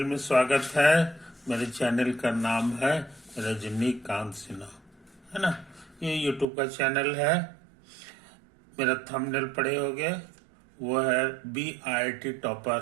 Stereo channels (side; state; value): left; drops out; at 6.5 s